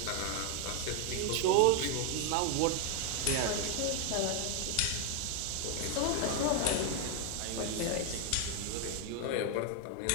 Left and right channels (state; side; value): different; both; correlation 0.00